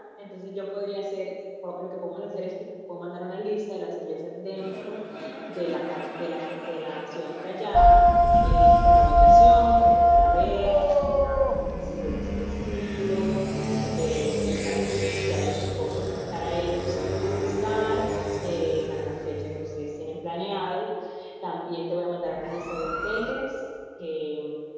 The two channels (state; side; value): identical; both; correlation 1.00